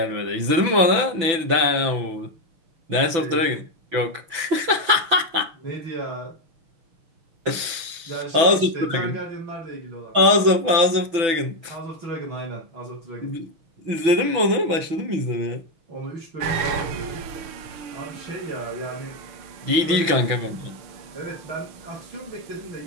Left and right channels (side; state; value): left; late; 6.0 ms